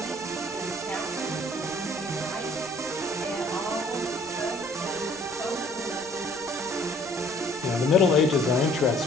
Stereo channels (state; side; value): noise; right; rumble, 25 dB below the sound